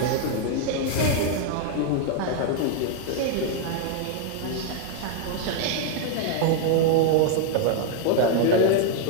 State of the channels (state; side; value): different; both; correlation 0.00